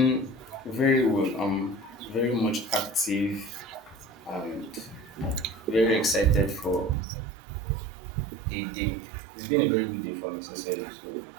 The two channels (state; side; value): drops out; left; at 7.0 s